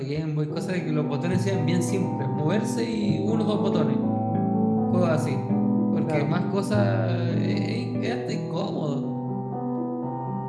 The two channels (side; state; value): both; identical; correlation 1.00